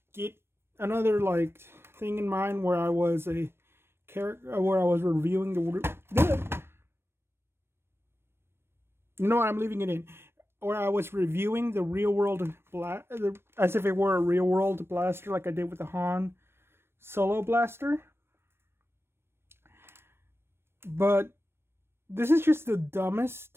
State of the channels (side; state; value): left; late; 0.12 ms